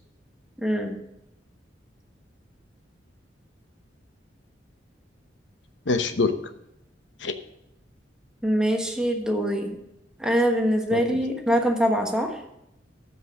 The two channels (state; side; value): normal; both; correlation 0.68